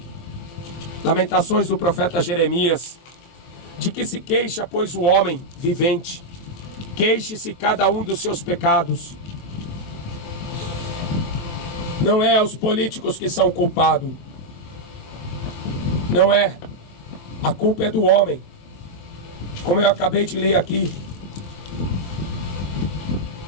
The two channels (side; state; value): right; late; 23 ms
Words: Lamentações do profeta Jeremias. De que se queixa, pois, o homem vivente? Queixe-se cada um dos seus pecados. Não é os políticos que são culpados. Não é. A culpa é do homem. Como eu acabei de ler aqui.